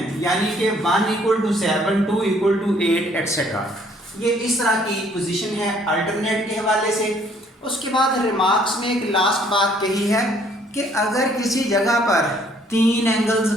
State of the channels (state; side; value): normal; both; correlation 0.62